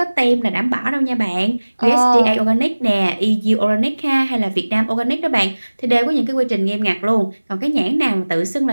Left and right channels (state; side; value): inverted; both; correlation -1.00